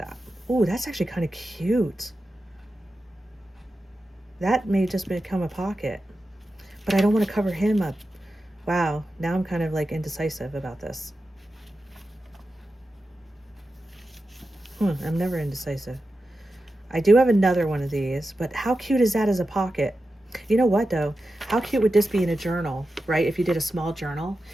Ooh, that's actually kind of cute. That may just become a pocket, but I don't want to cover him up. Wow, now I'm kind of like indecisive about this. I'm never indecisive. I do have another one of these, but how cute is that as a pocket? You know what though? How cute would this be in a journal, right? If you did a small journal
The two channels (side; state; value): both; normal; correlation 0.91